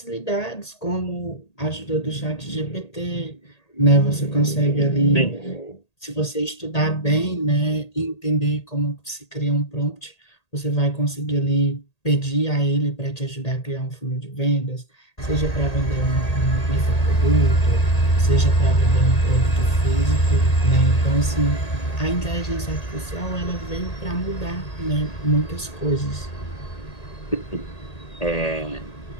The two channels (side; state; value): right; late; 1.8 ms